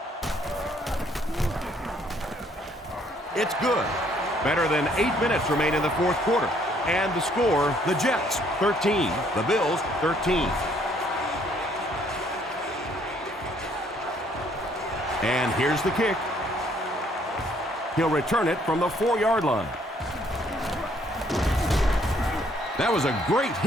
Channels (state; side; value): normal; both; correlation 0.65